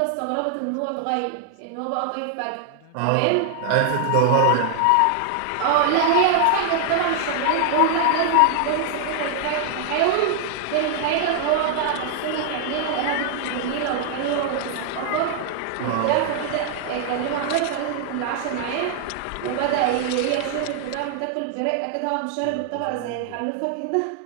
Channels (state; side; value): different; both; correlation 0.00